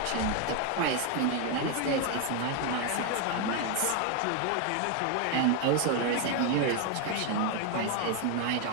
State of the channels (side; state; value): both; different; correlation 0.01